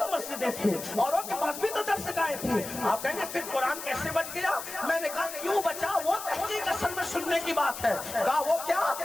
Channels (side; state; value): left; noise; hiss, 9 dB below the sound